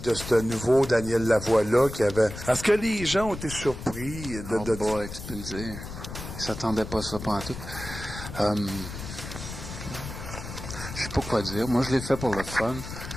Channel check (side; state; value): left; noise; rumble, 10 dB below the sound